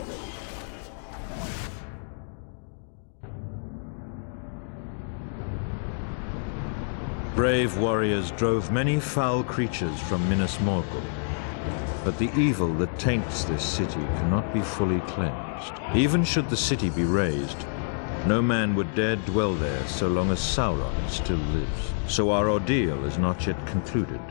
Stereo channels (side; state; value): right; silent; digital silence